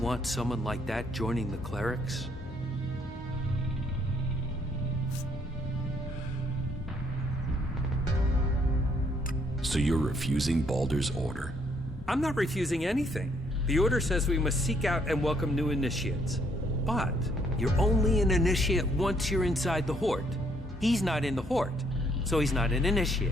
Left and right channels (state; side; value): normal; both; correlation 0.68